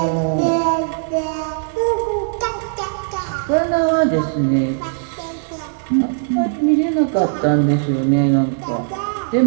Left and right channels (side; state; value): left; silent; digital silence